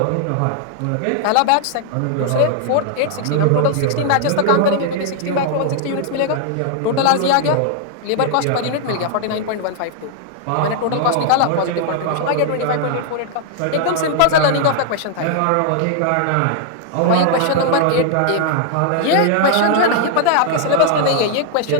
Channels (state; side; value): different; both; correlation 0.00